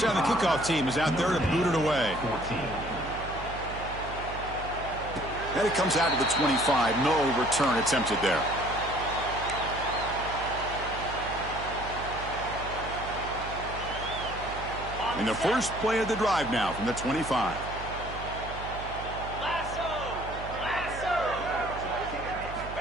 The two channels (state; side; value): noise; right; hum, 10 dB below the sound